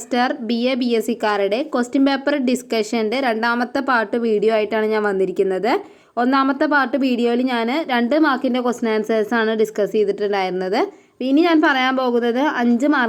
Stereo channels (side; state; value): both; identical; correlation 1.00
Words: BA BSc കാരുടെ ക്വസ്റ്റ്യൻ പേപ്പർ ഡിസ്കഷൻ്റെ രണ്ടാമത്തെ പാർട്ട് വീഡിയോ ആയിട്ടാണ് ഞാൻ വന്നിരിക്കുന്നത്. ഒന്നാമത്തെ പാർട്ട് വീഡിയോയിൽ ഞാൻ 2 മാർക്കിൻ്റെ ക്വസ്റ്റ്യൻ ആൻസേഴ്സാണ് ഡിസ്കസ് ചെയ്തിട്ടുണ്ടായിരുന്നത്. ഇനി ഞാൻ പറയാൻ പോകുന്നത് 5